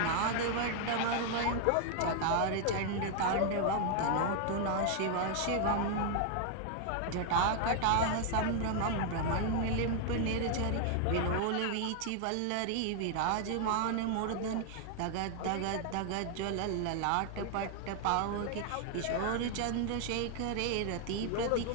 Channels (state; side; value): different; both; correlation 0.00